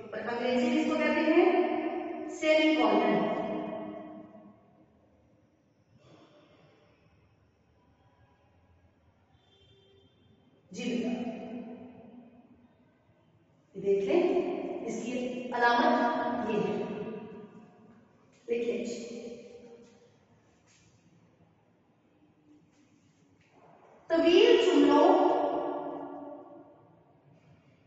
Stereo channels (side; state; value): both; identical; correlation 1.00